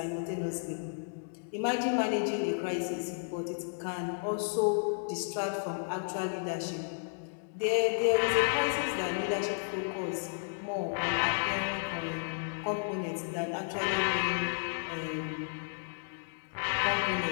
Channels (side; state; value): right; silent; digital silence